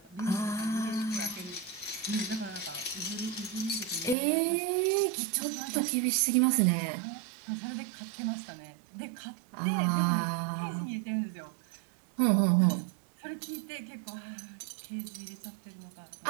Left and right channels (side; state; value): left; drops out; at 4.2 s